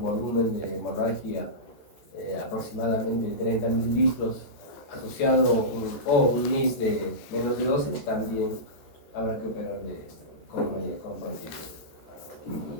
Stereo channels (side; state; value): right; late; 14 ms